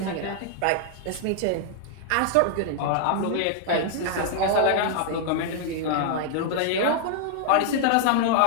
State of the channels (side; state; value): both; different; correlation 0.00